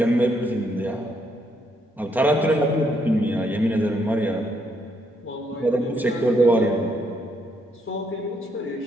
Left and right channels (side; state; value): both; normal; correlation 0.74